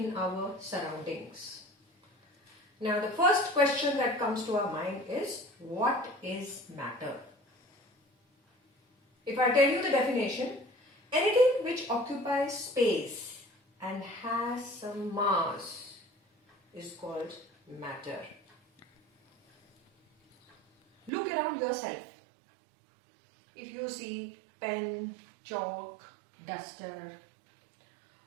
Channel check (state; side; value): drops out; left; at 21.1 s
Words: our surroundings. Now the first question that comes to our mind is what is matter? If I tell you the definition, anything which occupies space and has some mass is called matter. Look around yourself. If you see pen, chalk, duster,